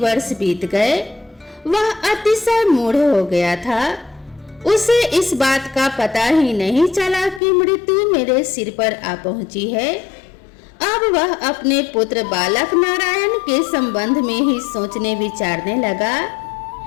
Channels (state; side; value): drops out; right; at 7.4 s